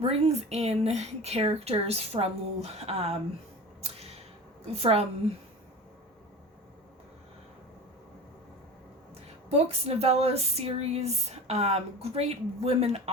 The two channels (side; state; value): both; normal; correlation 0.33